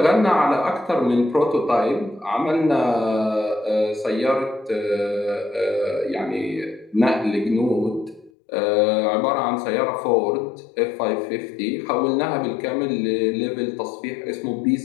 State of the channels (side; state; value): right; drops out; at 8.3 s